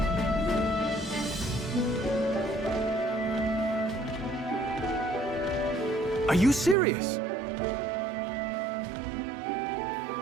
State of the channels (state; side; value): drops out; left; at 6.8 s